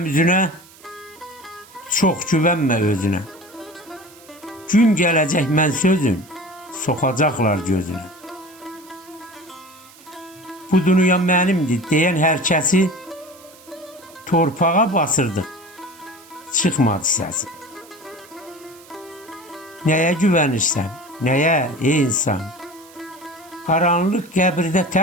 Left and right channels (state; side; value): noise; right; hiss, 24 dB below the sound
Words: üzünə, çox güvənmə özünə. Gün gələcək mən sözün, soxacaqlar gözünə. Bu dünya mənimdir deyən hər kəsi torpağa basırdı, çıxmadı səsi. Nəyə güvənirsən, nəyə ey insan? Qaranlıq qəbirdə